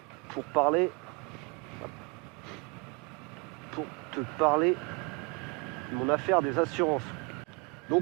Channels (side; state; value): left; quieter; 29.3 dB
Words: pour te parler de mon affaire des assurances.